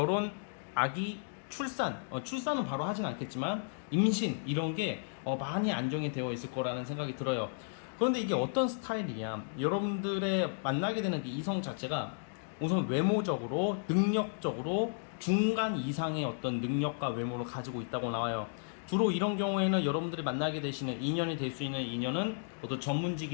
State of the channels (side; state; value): right; silent; digital silence